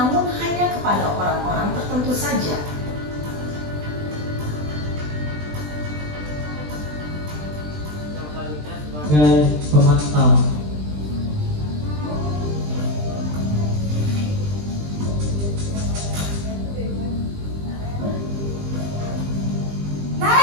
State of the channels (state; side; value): late; left; 20 ms